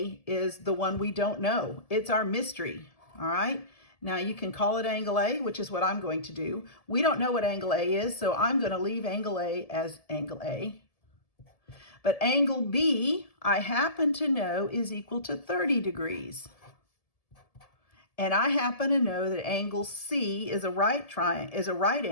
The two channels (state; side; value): late; right; 1.7 ms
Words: is the one we don't know. It's our mystery. All right. Now you can call it angle A, which is what I'm going to do. We don't know what angle A is, so I'm going to leave angle A as angle A. But angle B, I happen to know, is equal to 30 degrees. And I happen to know that angle C is a right